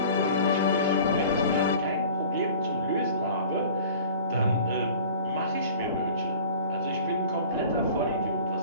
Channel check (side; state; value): both; inverted; correlation -0.44